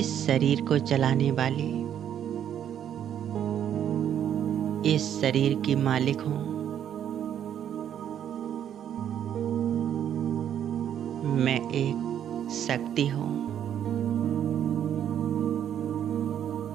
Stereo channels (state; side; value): quieter; left; 9.8 dB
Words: शरीर को चलाने वाली, इस शरीर की मालिक हूँ। मैं एक शक्ति हूँ।